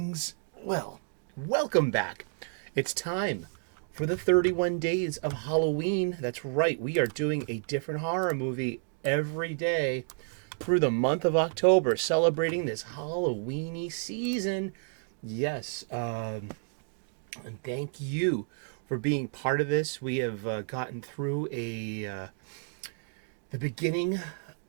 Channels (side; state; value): left; silent; 57 dB below the other